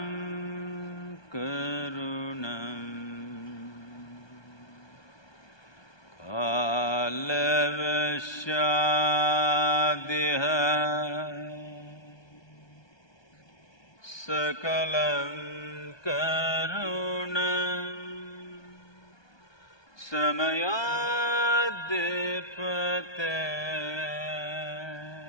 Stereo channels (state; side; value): late; right; 1.2 ms